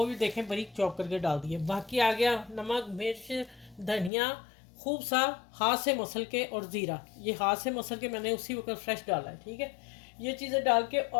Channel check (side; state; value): right; drops out; at 4.1 s